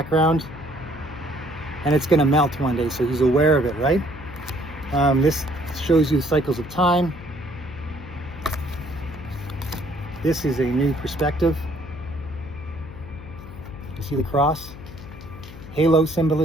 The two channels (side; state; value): left; noise; hum, 15 dB below the sound